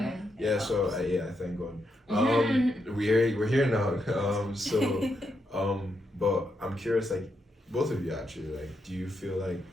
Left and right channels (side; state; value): both; normal; correlation 0.81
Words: So I thank God. We're here now. But I'm curious, like, both of you actually, like, do you feel like